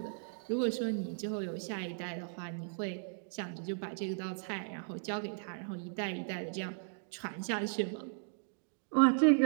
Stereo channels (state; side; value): silent; left; digital silence